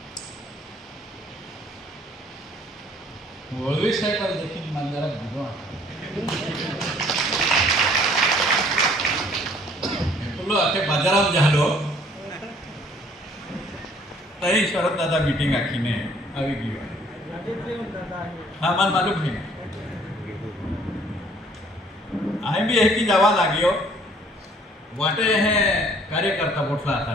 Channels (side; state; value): both; normal; correlation 0.58